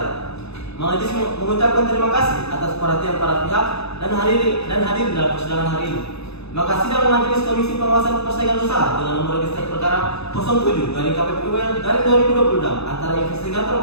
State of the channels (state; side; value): late; right; 0.79 ms